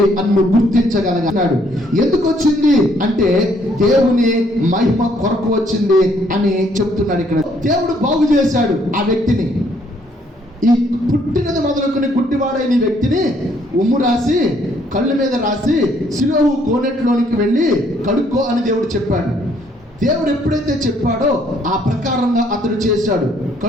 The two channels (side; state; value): both; normal; correlation 0.66